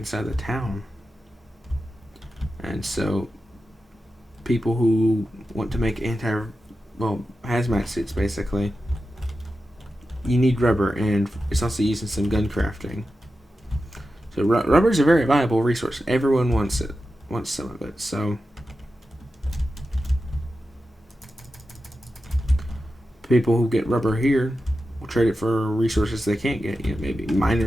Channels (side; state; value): both; normal; correlation 0.91